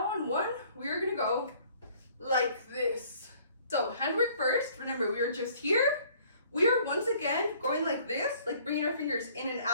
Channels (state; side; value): inverted; both; correlation -0.57